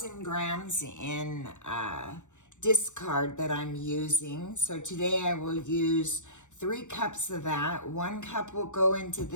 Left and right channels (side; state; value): right; late; 0.85 ms